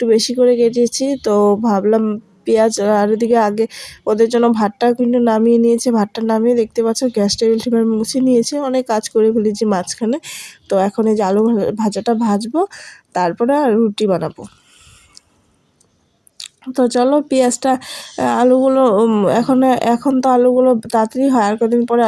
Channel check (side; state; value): both; identical; correlation 1.00